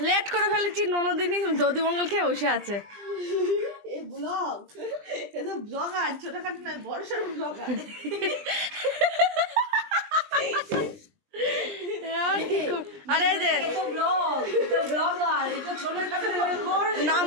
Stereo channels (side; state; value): left; late; 20 ms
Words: লেট করে ফেলেছি। ননদিনী দধিমঙ্গল খেয়ে বসে আছে। আরে যে